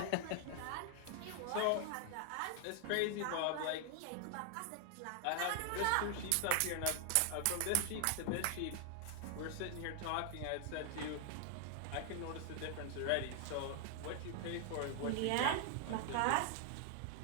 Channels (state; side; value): different; both; correlation 0.00